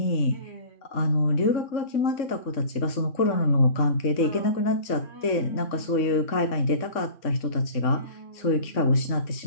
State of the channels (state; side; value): late; right; 3.6 ms